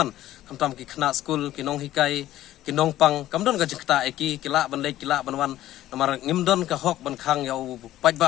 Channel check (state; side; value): quieter; right; 14.0 dB